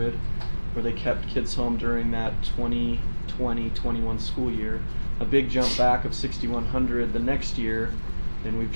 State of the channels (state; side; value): inverted; both; correlation -1.00